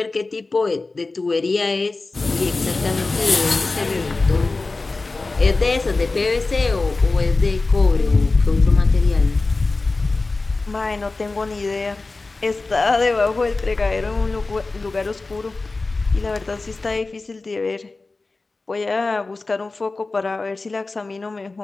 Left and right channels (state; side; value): quieter; right; 3.5 dB